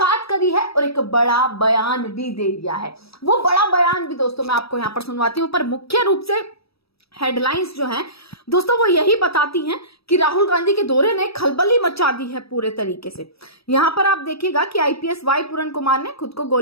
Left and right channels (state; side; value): late; right; 0.77 ms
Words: करी है और एक बड़ा बयान भी दे दिया है। वो बड़ा बयान भी दोस्तों मैं आपको यहां पर सुनवाती हूं, पर मुख्य रूप से हेडलाइंस जो हैं दोस्तों वो यही बताती हैं कि राहुल गांधी के दौरे ने खलबली मचा दी है पूरे तरीके से। यहां पर आप देखिएगा कि आईपीएस वाई पूरन कुमार ने खुद को